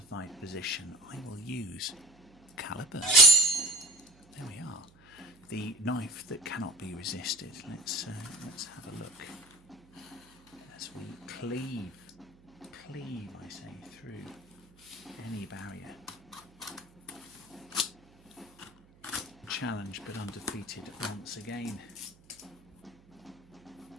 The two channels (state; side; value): noise; right; hum, 27 dB below the sound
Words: position? I will use calibers. There we are. The knife that cannot be resisted. Let's have a look as we cleave, I say, through any barrier. Challenged but undefeated once again.